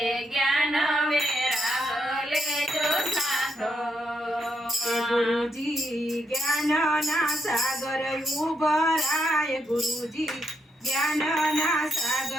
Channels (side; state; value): both; normal; correlation 0.80